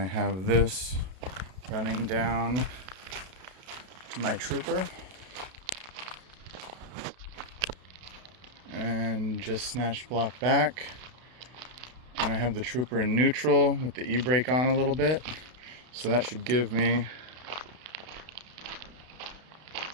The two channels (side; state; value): left; late; 32 ms